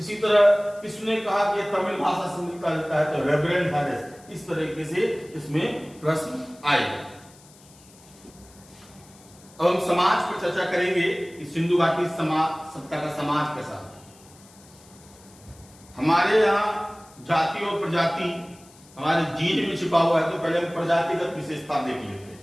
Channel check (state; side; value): noise; left; hiss, 25 dB below the sound